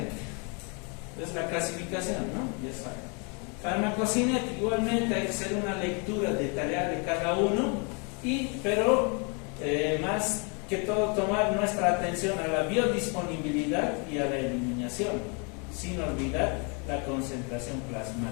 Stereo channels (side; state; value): right; quieter; 34.9 dB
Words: es la clasificación, ¿no? Ya saben. Farmacocinética, igualmente hay que hacer una lectura detallada de cada uno, pero más que todo tomar nuestra atención a la biodisponibilidad y a la eliminación, sin olvidar la concentración